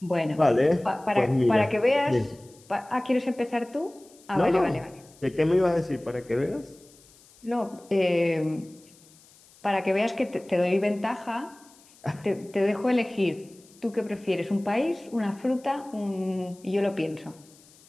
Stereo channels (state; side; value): noise; left; hiss, 27 dB below the sound